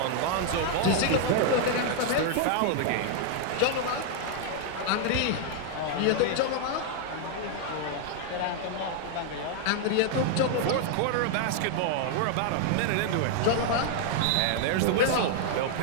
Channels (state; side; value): different; both; correlation 0.00